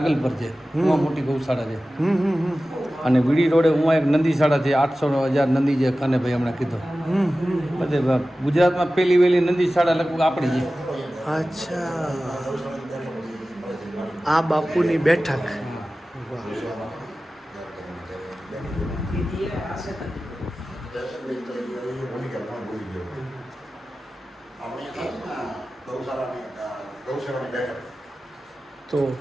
પર છે, એમાં મોટી ગૌશાળા છે. અને વીડી રોડે ઉમાં એક નંદીશાળા છે, 800,000 નંદી છે, કાનેભાઈ હમણાં કીધું. બધે ગુજરાતમાં પહેલી વહેલી નંદીશાળા લગભગ આપણી છે. અચ્છા, આ બાપુની બેઠક. તો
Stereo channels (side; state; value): both; normal; correlation 0.95